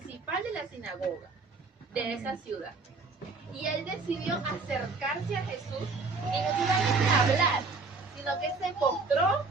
de la sinagoga de esa ciudad. Y él decidió acercarse a Jesús y no solamente hablar, sino que se postró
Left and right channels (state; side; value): quieter; left; 4.1 dB